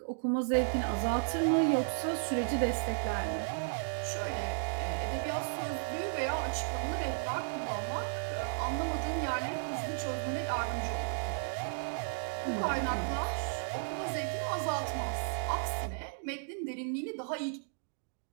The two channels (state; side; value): silent; left; digital silence